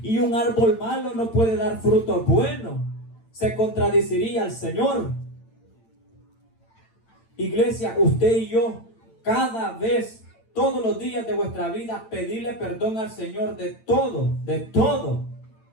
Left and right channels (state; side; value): late; right; 8.9 ms